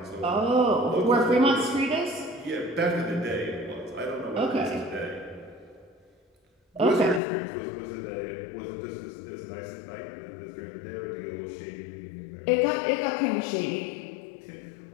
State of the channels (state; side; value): drops out; right; at 7.2 s